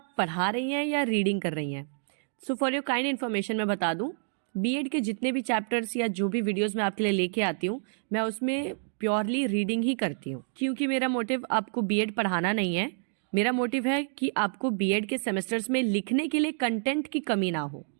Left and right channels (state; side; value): silent; left; digital silence